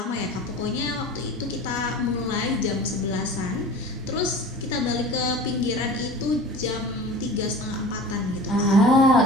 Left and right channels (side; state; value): both; normal; correlation 0.38